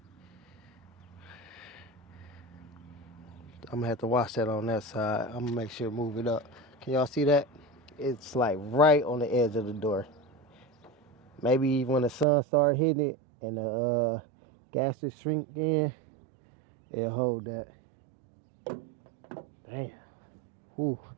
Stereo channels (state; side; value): drops out; left; at 12.2 s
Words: I'm gonna have to watch that on that side. I'm gonna make sure to move it up. Can y'all see that? It's like right on the edge of the door. Maybe when the sun starts hitting it and the gases shrink in, it'll hold that. Damn. Whew.